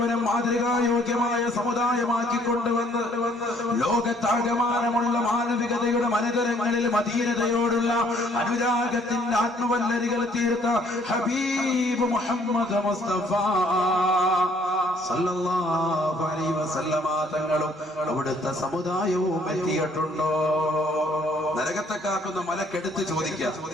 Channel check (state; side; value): normal; both; correlation 0.62